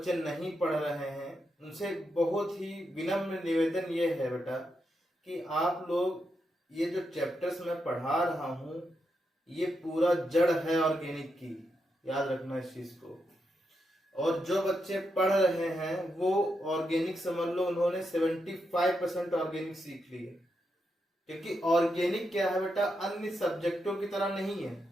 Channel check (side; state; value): both; normal; correlation 0.84